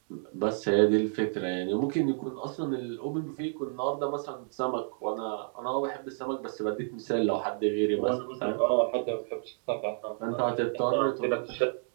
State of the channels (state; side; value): silent; left; digital silence